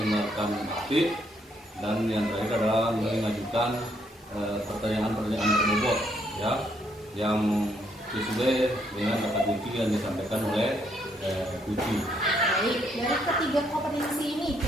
aktif, dan yang terakhir adalah mengajukan pertanyaan-pertanyaan berbobot ya, yang sesuai dengan kata kunci yang disampaikan oleh kunci. Baik, dari ketiga kompetensi ini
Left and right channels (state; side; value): normal; both; correlation 0.72